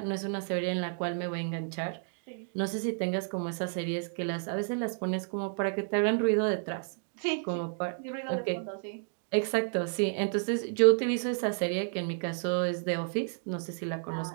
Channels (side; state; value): left; silent; digital silence